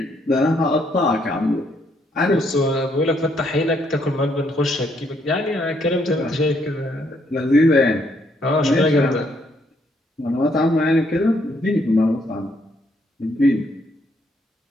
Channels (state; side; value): normal; both; correlation 0.71